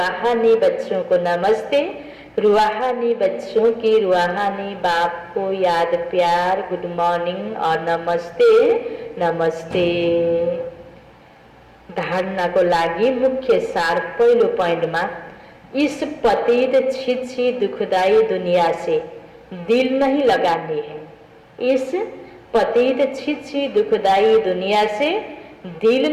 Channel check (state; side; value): identical; both; correlation 1.00